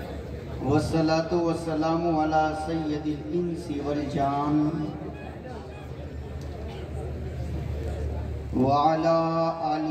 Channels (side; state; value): both; identical; correlation 1.00